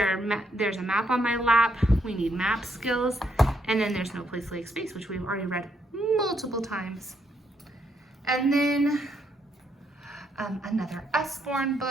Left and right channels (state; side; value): normal; both; correlation 0.75